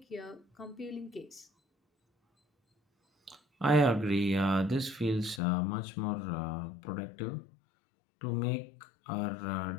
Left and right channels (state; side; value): drops out; right; at 5.4 s